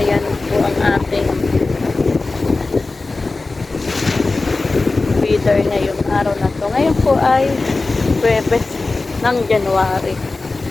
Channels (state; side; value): quieter; right; 3.5 dB